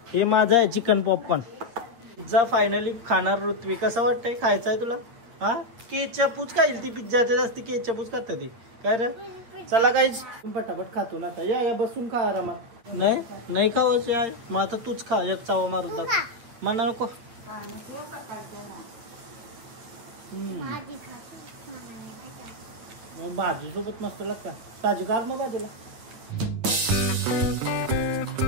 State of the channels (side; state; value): left; late; 8.7 ms